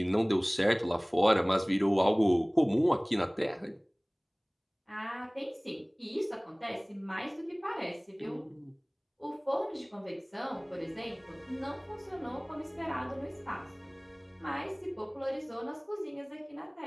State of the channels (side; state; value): both; identical; correlation 1.00